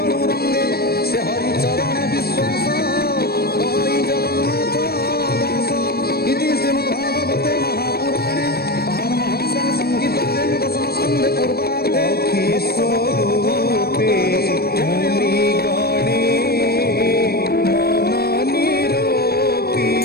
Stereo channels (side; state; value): right; late; 0.46 ms